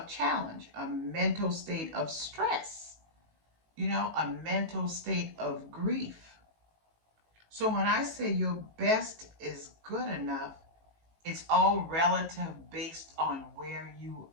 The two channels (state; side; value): late; left; 18 ms